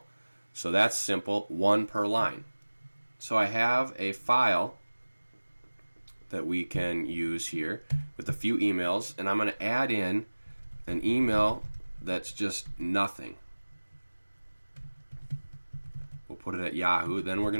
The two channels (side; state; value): both; inverted; correlation -1.00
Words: So that's simple, one per line. So I have a file that we can use here with a few emails, and I'm going to add in an email that's just nothing. We'll put it at Yahoo. Then we're